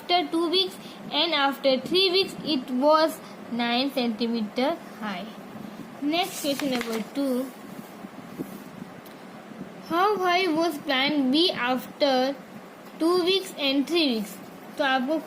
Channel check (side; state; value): both; identical; correlation 1.00